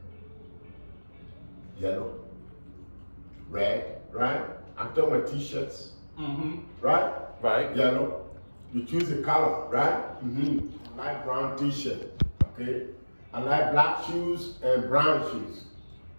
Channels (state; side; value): inverted; both; correlation -1.00